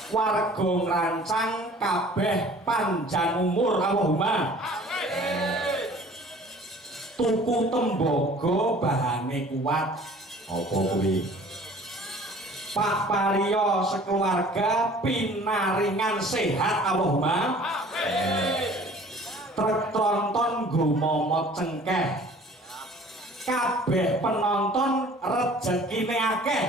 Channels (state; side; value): normal; both; correlation 0.49